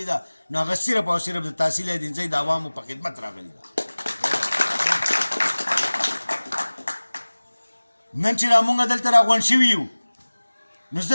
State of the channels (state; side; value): inverted; both; correlation -1.00